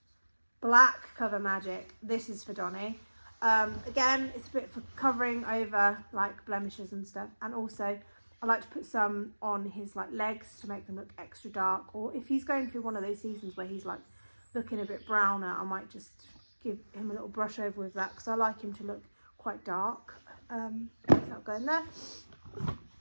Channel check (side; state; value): both; inverted; correlation -1.00